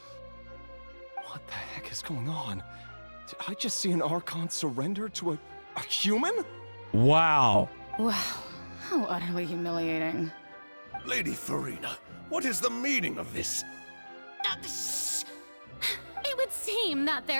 What the heck is going on? Did I just see an Archon surrender to a human? Wow. Wow, how utterly humiliating. Lady Furina, what is the meaning of this? It would seem that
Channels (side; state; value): both; inverted; correlation -1.00